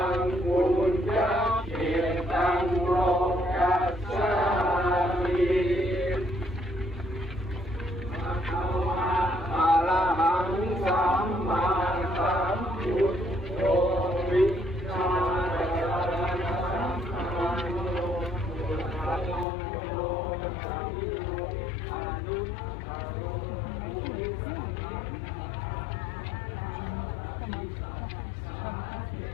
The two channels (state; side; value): drops out; right; at 19.5 s